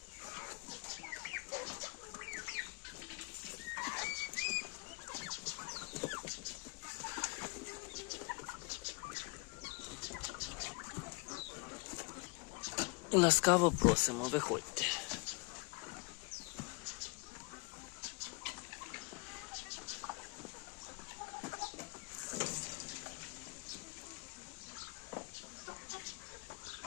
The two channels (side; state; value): right; quieter; 30.2 dB